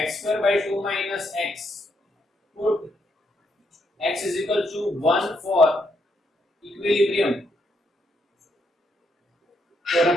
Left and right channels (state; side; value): normal; both; correlation 0.77